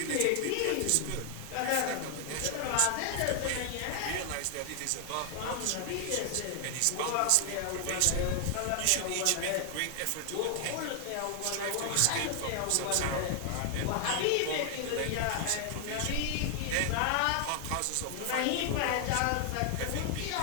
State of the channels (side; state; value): both; different; correlation 0.00